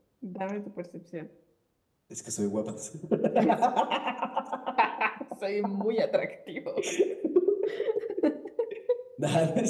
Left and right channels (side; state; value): both; identical; correlation 1.00